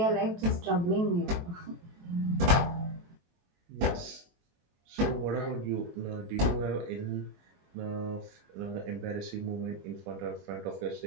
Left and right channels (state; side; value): late; left; 23 ms